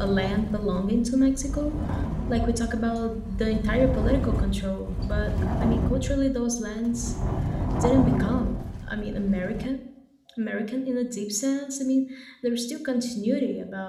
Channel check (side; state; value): both; identical; correlation 1.00